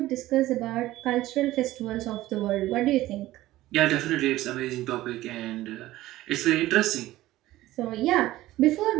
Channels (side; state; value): left; quieter; 16.1 dB